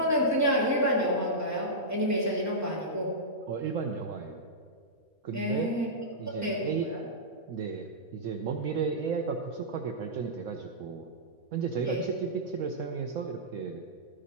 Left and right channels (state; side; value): normal; both; correlation -0.14